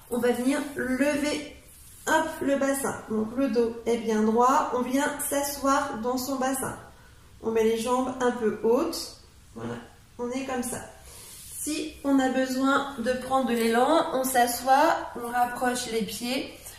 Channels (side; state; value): both; identical; correlation 1.00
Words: on va venir lever. Hop, le bassin, donc le dos est bien droit, on vient s'asseoir dans son bassin. On met les jambes un peu hautes, voilà, on est comme ça. Si on a besoin de prendre de l'élan, on s'assoit, on rapproche les pieds